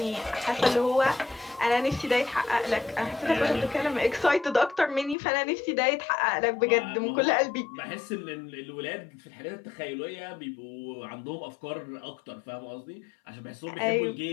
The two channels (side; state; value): right; drops out; at 5.2 s